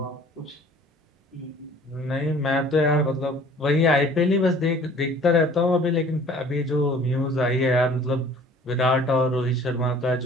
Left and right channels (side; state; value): both; normal; correlation 0.51